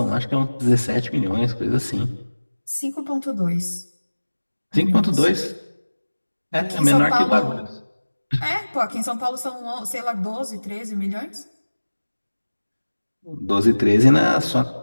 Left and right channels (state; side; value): inverted; both; correlation -1.00